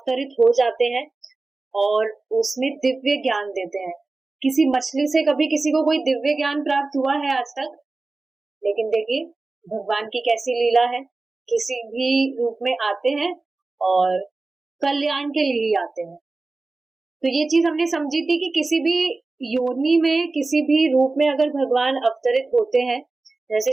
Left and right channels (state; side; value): quieter; left; 3.4 dB